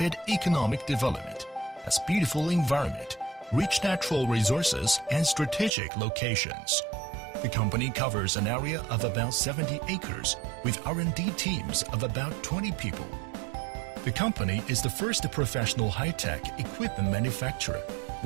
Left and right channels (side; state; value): left; drops out; at 5.7 s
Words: economic development, has beautiful environment, rich natural resources, and strategic locations. The company covers an area of about 70 acres with R&D teams of about 20 people. The company is the first professional high-tech equipment manufacturer